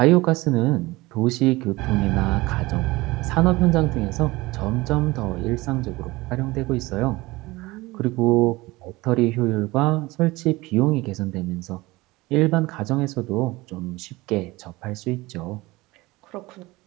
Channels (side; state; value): left; quieter; 20.9 dB